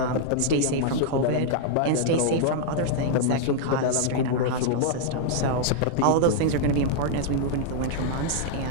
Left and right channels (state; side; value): different; both; correlation -0.01